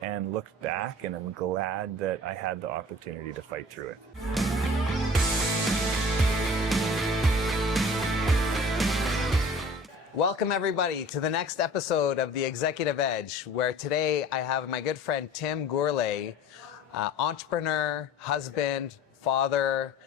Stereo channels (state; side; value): normal; both; correlation 0.44